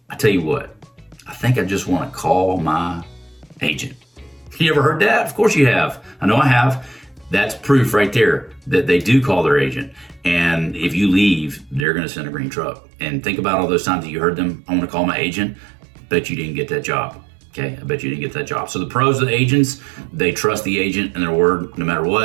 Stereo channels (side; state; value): left; drops out; at 11.9 s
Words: tell you what, I think I just want to call my agent. You ever heard that? Of course you have. I know I have. That's proof right there that they do call their agent. And if you leave, they're going to send a green truck. And think about all those times that you heard them, I want to call my agent. Bet you didn't get that job. Okay, I bet you didn't get that job. So the pros of the agents, they trust the agent and their word no matter